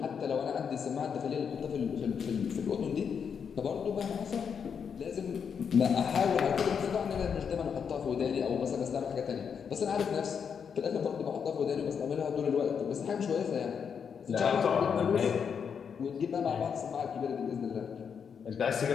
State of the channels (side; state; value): right; quieter; 6.9 dB